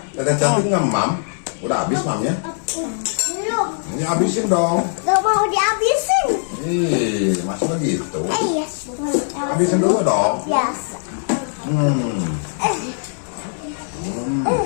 Dada cantik nggak, Mam? Udah habis, Mamnya? Ini habisin dong. Gak mau dihabisin. Ih, masih begitu. Yes. Habisin dulu dong. Yes.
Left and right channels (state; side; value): silent; right; digital silence